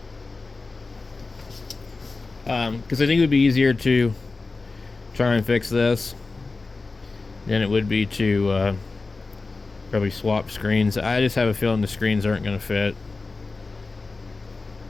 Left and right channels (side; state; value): right; quieter; 3.8 dB